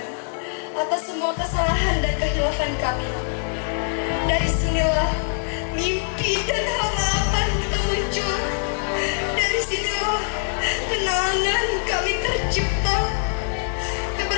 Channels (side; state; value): right; silent; digital silence